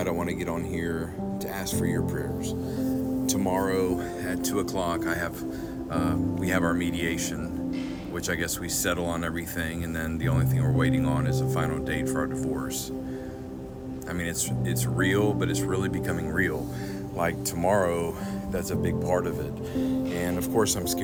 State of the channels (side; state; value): both; identical; correlation 1.00